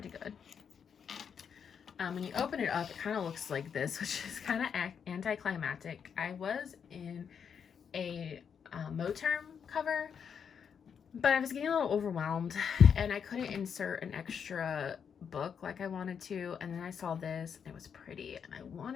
good. When you open it up, it kind of looks like this, which is kind of anticlimactic. I was in a Moterm cover, but I was getting a little overwhelmed and I couldn't insert an extra book like I wanted to. And then I saw this and it was pretty and I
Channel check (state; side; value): quieter; right; 7.2 dB